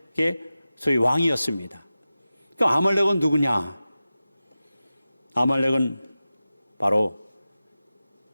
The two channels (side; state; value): both; inverted; correlation -0.95